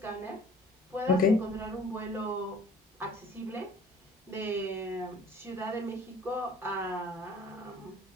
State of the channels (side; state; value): both; normal; correlation 0.51